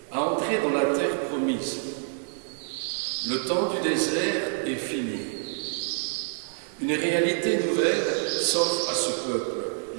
à entrer dans la terre promise. Le temps du désert est fini. Une réalité nouvelle s'offre à ce peuple,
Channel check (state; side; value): silent; left; 60 dB below the other